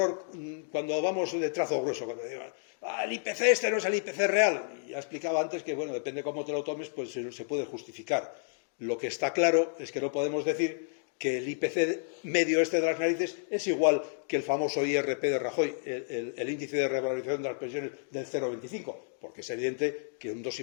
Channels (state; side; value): silent; right; digital silence